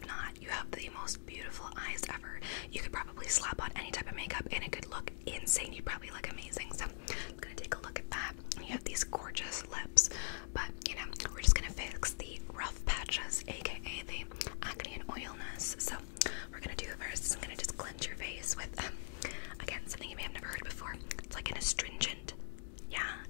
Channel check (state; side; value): silent; right; digital silence